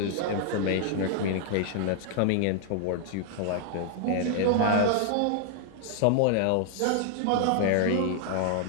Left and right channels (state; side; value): different; both; correlation 0.00